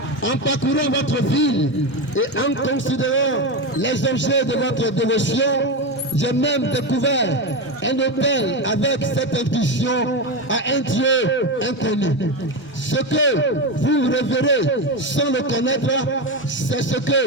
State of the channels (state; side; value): normal; both; correlation 0.16